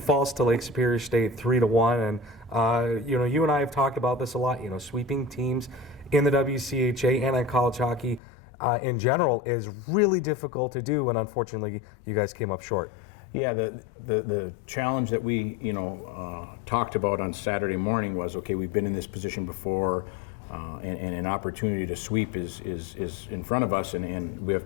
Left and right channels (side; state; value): right; drops out; at 8.2 s